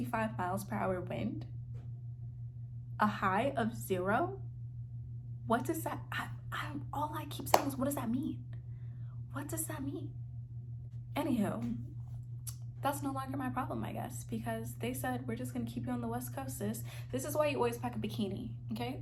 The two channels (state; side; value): identical; both; correlation 1.00